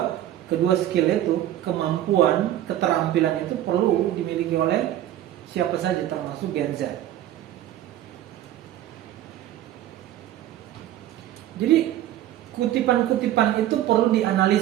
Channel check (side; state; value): left; quieter; 12.7 dB